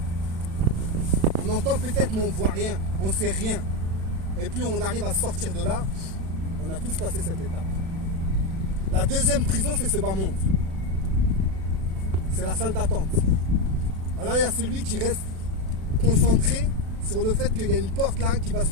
On entend peut-être, mais on ne voit rien, on ne sait rien. Et puis on arrive à sortir de là, on a tous passé cette étape. La deuxième prison, c'est ce bas monde. C'est la salle d'attente. Alors il y a celui qui reste concentré sur le fait qu'il y a une porte là qui va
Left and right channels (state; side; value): late; left; 36 ms